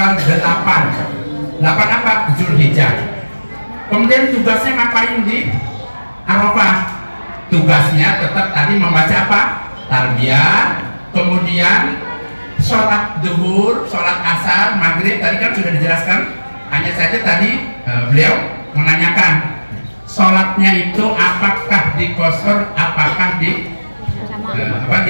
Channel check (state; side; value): inverted; both; correlation -1.00